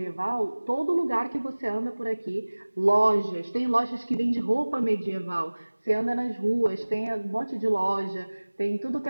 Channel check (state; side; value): inverted; both; correlation -1.00